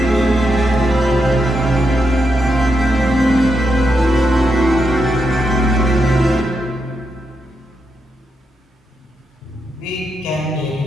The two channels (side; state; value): both; normal; correlation 0.83